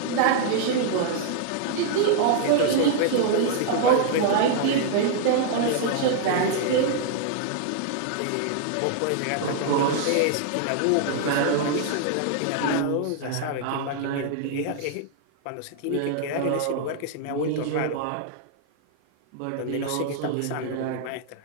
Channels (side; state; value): both; different; correlation -0.01